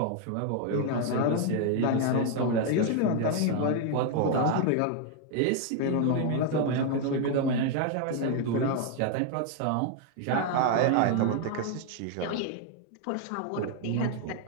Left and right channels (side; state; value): both; different; correlation 0.00